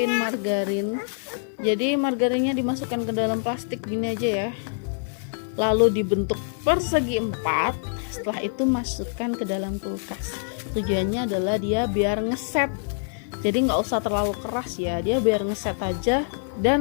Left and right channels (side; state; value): right; silent; 62 dB below the other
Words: margarin. Jadi margarinnya dimasukkan ke dalam plastik gini aja ya, lalu dibentuk persegi 4. Setelah itu masukkan ke dalam kulkas. Tujuannya adalah dia biar ngeset, jadi nggak usah terlalu keras ya, dia biar ngeset aja.